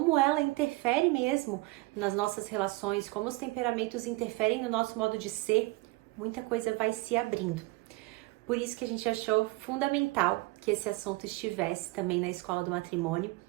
ela interfere mesmo nas nossas relações, como os temperamentos interferem no nosso modo de ser, muita coisa vai se abrindo. Por isso que a gente achou fundamental que esse assunto estivesse também na Escola do Matrimônio,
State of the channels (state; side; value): quieter; left; 22.1 dB